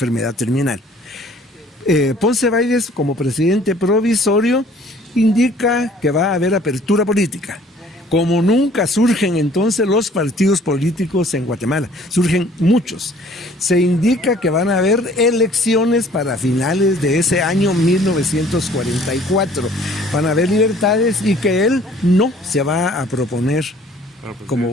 terminal. Ponce Baides, como presidente provisorio, indica que va a haber apertura política. Como nunca surgen entonces los partidos políticos en Guatemala, surgen muchos. Se indica que van a haber elecciones para finales de ese año 1944. Van a haber libertades y que él no se va a proponer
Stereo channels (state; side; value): normal; both; correlation 0.55